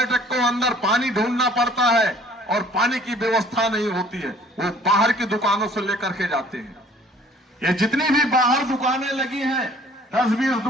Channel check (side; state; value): both; normal; correlation 0.55